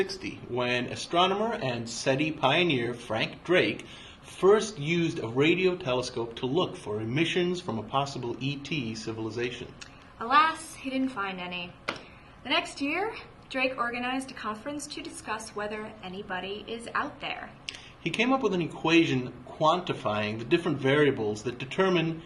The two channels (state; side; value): identical; both; correlation 1.00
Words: when astronomer and SETI pioneer Frank Drake first used a radio telescope to look for emissions from a possible ET civilization. Alas, he didn't find any. The next year, Drake organized a conference to discuss whether anybody is out there. He came up with an equation quantifying the different variables that determine